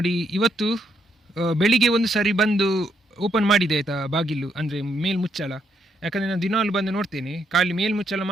ಇವತ್ತು ಬೆಳಿಗ್ಗೆ ಒಂದು ಸಾರಿ ಬಂದು ಓಪನ್ ಮಾಡಿದೆ ಆಯಿತಾ ಬಾಗಿಲು, ಅಂದರೆ ಮೇಲ್ಮುಚ್ಚಳ. ಯಾಕಂದರೆ ನಾನು ದಿನಾಲು ಬಂದು ನೋಡ್ತೇನೆ, ಖಾಲಿ ಮೇಲ್ಮುಚ್ಚಳ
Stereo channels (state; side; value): normal; both; correlation 0.75